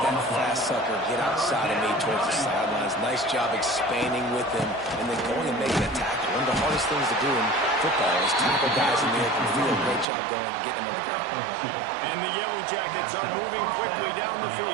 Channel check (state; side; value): drops out; left; at 10.1 s